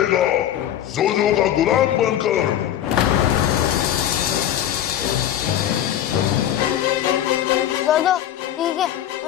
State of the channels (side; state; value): right; quieter; 11.4 dB